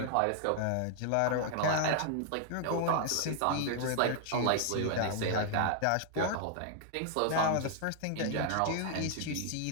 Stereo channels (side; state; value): both; different; correlation 0.00